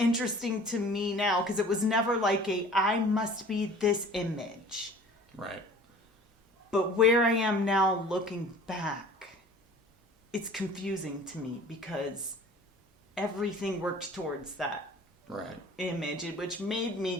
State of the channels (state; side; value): normal; both; correlation 0.46